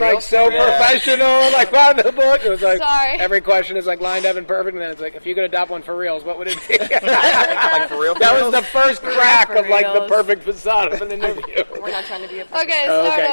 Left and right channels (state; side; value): inverted; both; correlation -1.00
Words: so professional, like by the book. It was like every question is like lined up and perfect, and then it's like, if you could adopt one for reals, what would it be? Like for real? That was the first crack of like the perfect facade of an interview. We're not trying to be a Okay, start